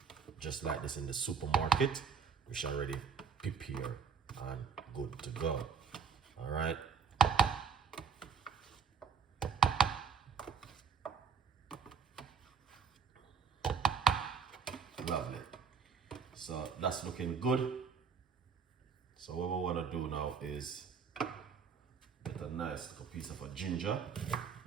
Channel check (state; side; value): quieter; left; 6.4 dB